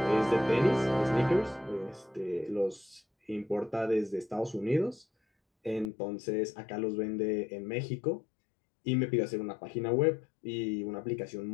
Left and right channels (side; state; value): right; drops out; at 5.9 s